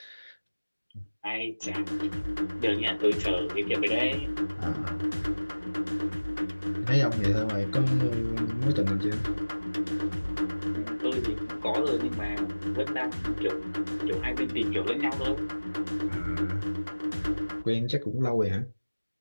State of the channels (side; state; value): both; inverted; correlation -1.00